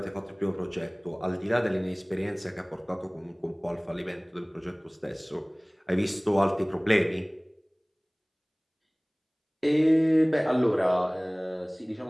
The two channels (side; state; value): both; identical; correlation 1.00